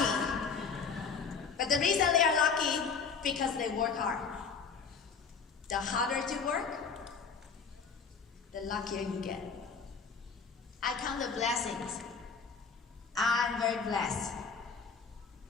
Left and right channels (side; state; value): right; quieter; 5.7 dB